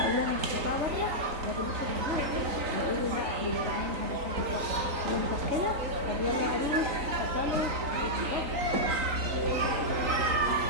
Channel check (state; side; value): late; left; 3.9 ms